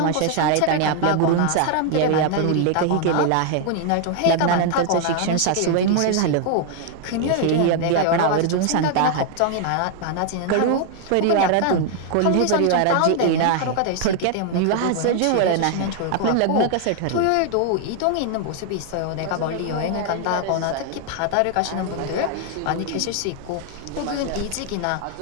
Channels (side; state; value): both; different; correlation 0.00